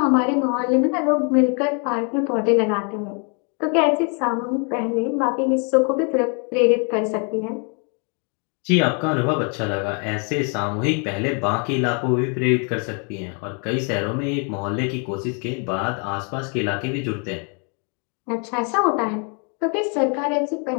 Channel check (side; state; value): right; quieter; 37.9 dB